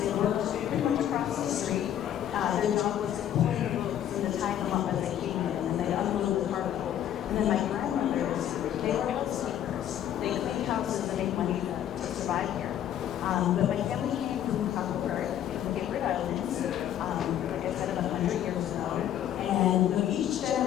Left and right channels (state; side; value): quieter; right; 10.8 dB